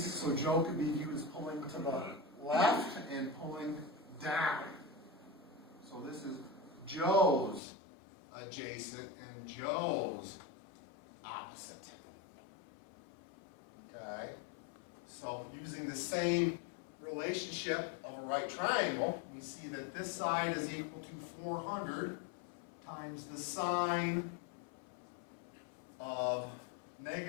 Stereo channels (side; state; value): right; drops out; at 7.6 s